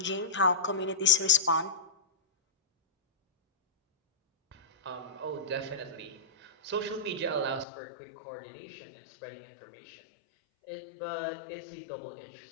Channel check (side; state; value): right; drops out; at 7.7 s